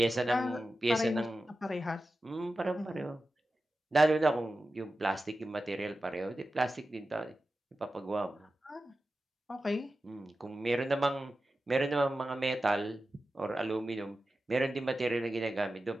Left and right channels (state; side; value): normal; both; correlation 0.93